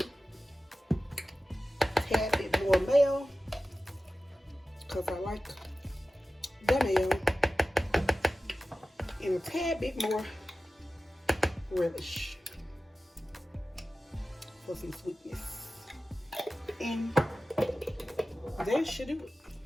a tad bit more mayo, because I like the mayo. And a tad bit more relish for some sweetness. And that should do it.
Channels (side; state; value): both; normal; correlation 0.95